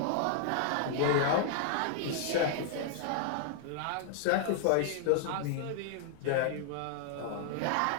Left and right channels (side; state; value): both; different; correlation -0.01